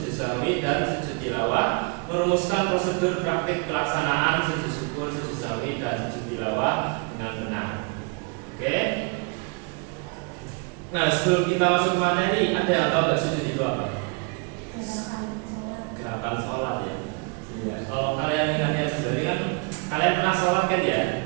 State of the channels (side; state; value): left; quieter; 33.5 dB